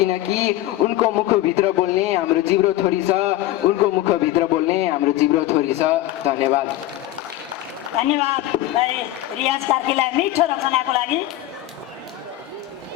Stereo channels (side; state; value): right; quieter; 14.9 dB